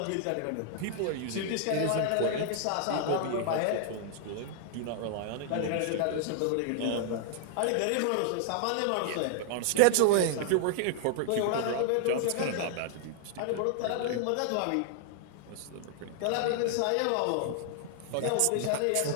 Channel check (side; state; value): both; different; correlation 0.00